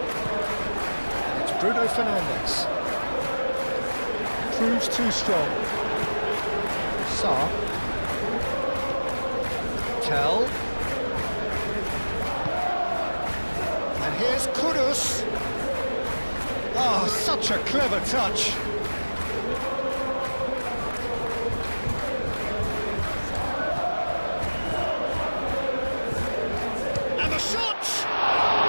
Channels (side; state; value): both; inverted; correlation -1.00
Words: And it's Bruno Fernandes. Proves too strong. Sarr. Tell. And here's Kudus. Oh, such a clever touch. And the shot!